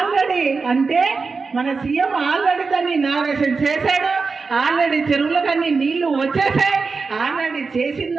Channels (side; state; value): left; quieter; 4.5 dB